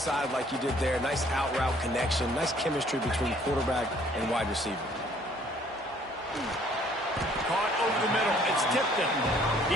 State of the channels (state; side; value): normal; both; correlation 0.60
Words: like you did there. Nice out route connection. Nice chemistry between quarterback and wide receiver. Caught over the middle. It's Tipton.